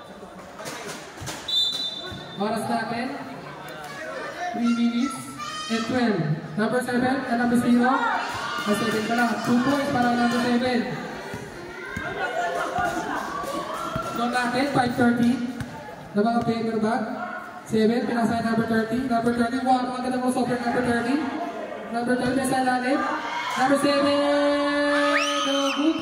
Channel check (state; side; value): identical; both; correlation 1.00